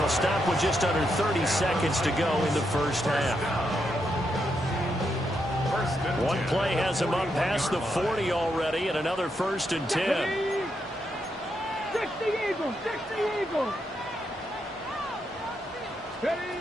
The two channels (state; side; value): normal; both; correlation 0.81